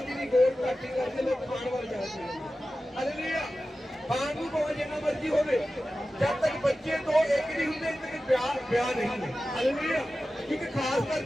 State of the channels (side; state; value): both; normal; correlation 0.94